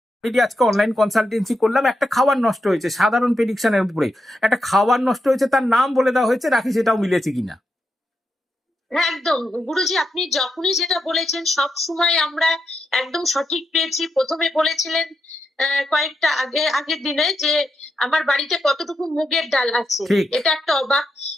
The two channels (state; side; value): normal; both; correlation 0.84